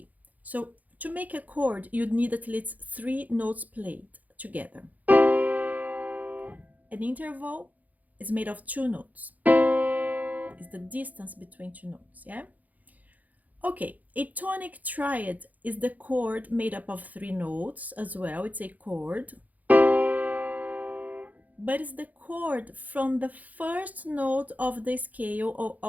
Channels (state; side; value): late; left; 0.079 ms